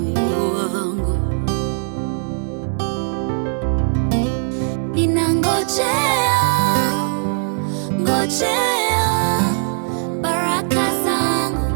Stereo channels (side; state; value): left; silent; digital silence